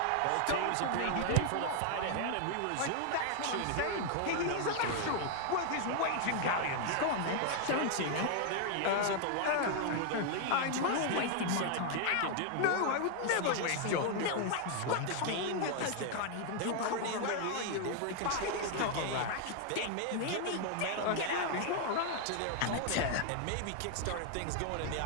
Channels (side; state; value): both; different; correlation 0.00